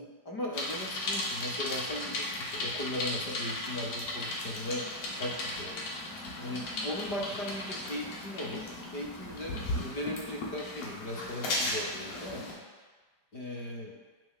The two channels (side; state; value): right; late; 5.0 ms